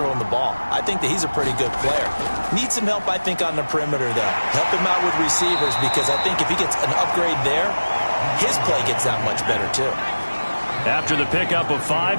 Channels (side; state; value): both; inverted; correlation -1.00